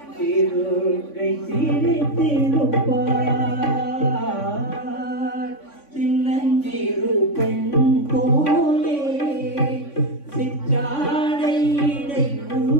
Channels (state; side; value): late; right; 3.5 ms